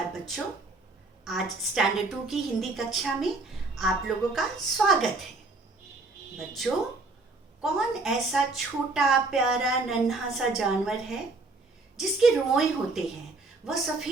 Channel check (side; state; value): left; quieter; 3.4 dB